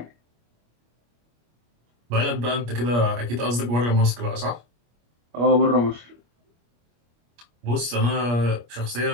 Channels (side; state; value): left; late; 25 ms